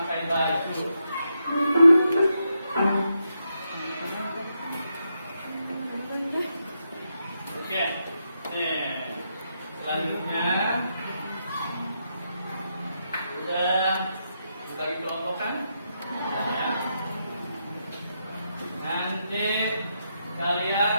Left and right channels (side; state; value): both; inverted; correlation -0.83